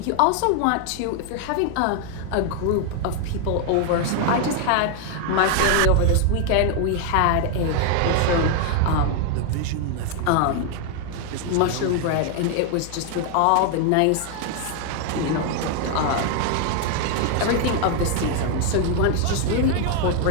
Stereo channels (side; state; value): both; different; correlation 0.00